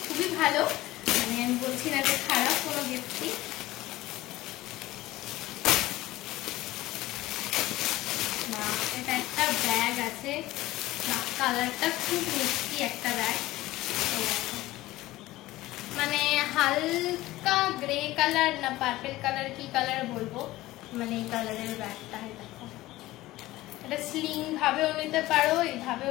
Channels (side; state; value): right; quieter; 17.3 dB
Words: খুবই ভালো, মানে আমি বলছি না যে খারাপ কোনো গিফটই। এটা একটা ব্যাগ আছে, কালারটা খুব মিষ্টি একটা ব্যাগ, মানে হালকা গ্রে কালার না পার্পল কালার, কি কালার বলবো, মানে এই কালারের ব্যাগটা। দেখো, এটা স্লিং ভাবেও নিতে পারো,